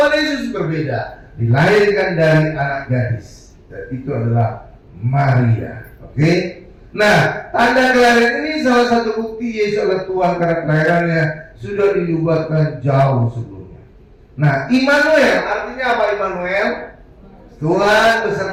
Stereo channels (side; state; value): both; identical; correlation 1.00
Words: Yesus berbeda, dilahirkan dari anak gadis, dan itu adalah Maria. Oke? Nah, tanda kelahiran ini salah satu bukti Yesus adalah Tuhan karena kelahirannya sudah dinubuatkan jauh sebelumnya. Nah, Immanuel artinya apa Immanuel? Tuhan